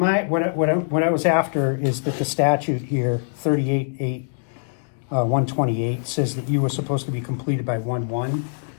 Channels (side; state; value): right; silent; digital silence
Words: I was after is that the statute here, 128, says that you were supposed to be completed by 1/1.